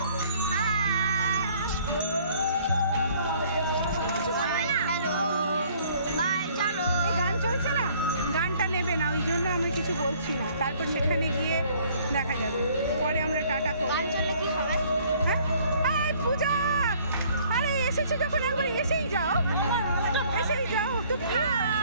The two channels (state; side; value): inverted; both; correlation -0.58